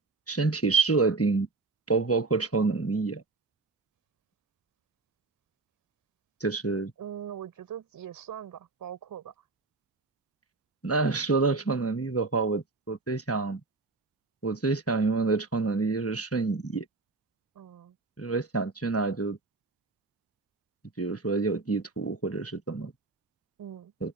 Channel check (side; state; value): left; quieter; 3.7 dB